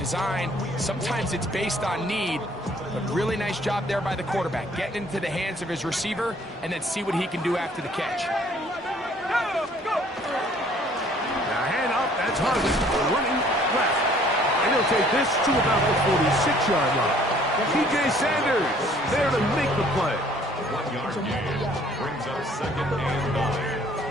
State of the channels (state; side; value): normal; both; correlation 0.58